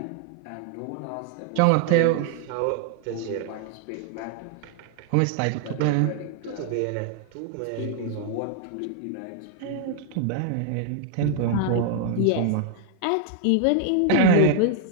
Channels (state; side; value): different; both; correlation 0.00